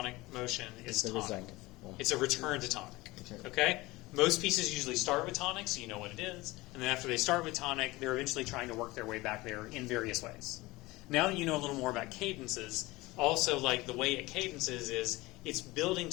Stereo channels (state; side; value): quieter; right; 20.8 dB